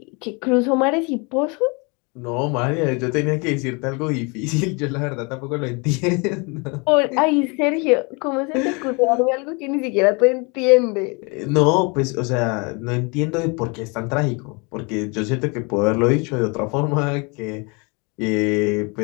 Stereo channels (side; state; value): right; quieter; 30.5 dB